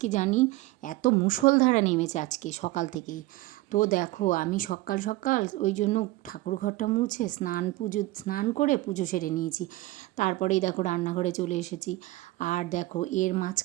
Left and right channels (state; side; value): quieter; left; 19.0 dB